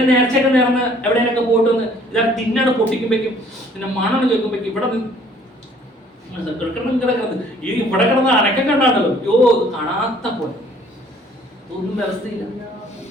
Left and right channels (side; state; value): both; normal; correlation 0.58